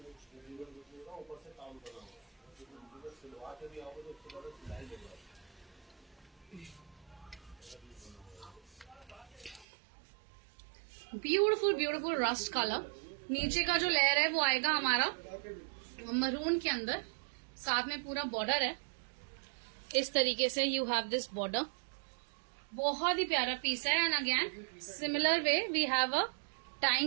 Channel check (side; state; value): left; drops out; at 9.7 s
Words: Beautiful beautiful rust colour. नीचे का जो लेयर है वो आएगा हमारा मरून के अंदर, साथ में पूरा बॉर्डर है इस तरीके से। यू हैव दिस बॉर्डर, बहुत ही प्यारा पीस है। And again similar way we have a